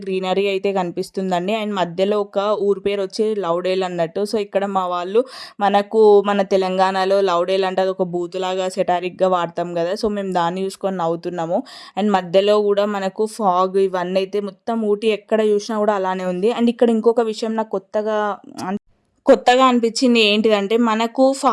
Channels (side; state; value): both; identical; correlation 1.00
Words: గ్రీనరీ అయితే కనిపిస్తుందండి. అండ్ మధ్యలో ఒక ఊరు పేరు వచ్చి లౌడేల్ అన్నట్టు. సో ఇక్కడ మా వాళ్ళు మన తెలంగాణలో లౌడేల్ అంటే అది ఒక బూతులాగా సెటారిక్గా వాడతాం కదా. సో మేము దాన్ని చూసుకొని నవ్వుతున్నాము. అండ్ మధ్యలో కూడా మనకు ఫాగ్ ఇవన్నీ అయితే మొత్తం ఊటీ ఎక్కడ చూసినా కూడా అలానే ఉంది. అండ్ ఇక్కడ ఇంకొక విషయం నాకు కొత్తగా అనిపించింది ఏంటిదంటే, మనకు